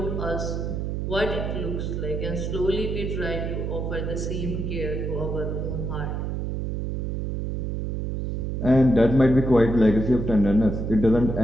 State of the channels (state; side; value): noise; right; hum, 2 dB below the sound